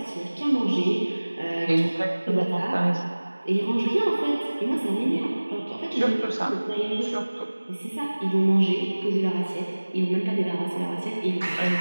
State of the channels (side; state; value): both; inverted; correlation -1.00